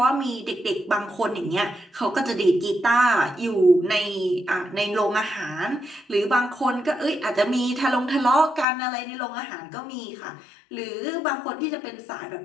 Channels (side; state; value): right; drops out; at 8.7 s